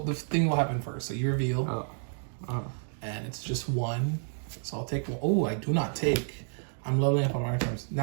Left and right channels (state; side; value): silent; left; 58 dB below the other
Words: the thing will happen first. So you reveal, Oh. Oh. and it's just 1. So I'll take 1. Oh, I do not take. I'm leveling up on my terms.